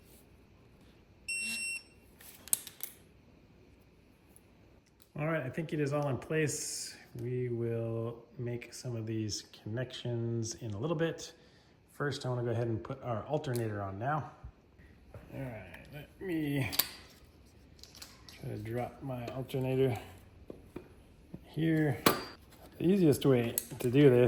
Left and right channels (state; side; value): identical; both; correlation 1.00